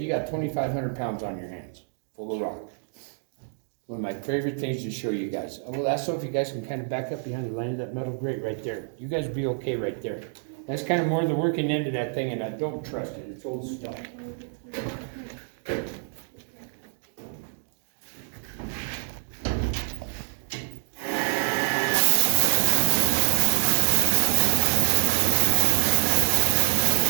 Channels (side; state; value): left; silent; 61 dB below the other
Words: got 2,500 pounds on your hands, full of rock. One of my favorite things to show you guys. Well, that's so if you guys can kind of back up behind the line of that metal grate right there. You guys will be okay right there. That's kind of more the working end of that thing, and I don't trust it. It's old stuff.